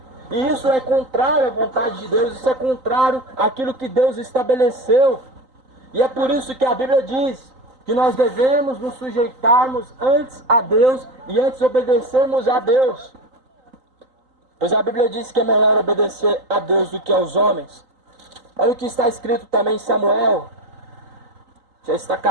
E isso é contrário à vontade de Deus, isso é contrário àquilo que Deus estabeleceu. E é por isso que a Bíblia diz que nós devemos nos sujeitarmos antes a Deus e antes obedecermos a Deus. Pois a Bíblia diz que é melhor obedecer a Deus do que aos homens. Olha o que está escrito também em Samuel. Já está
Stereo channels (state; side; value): late; left; 3.9 ms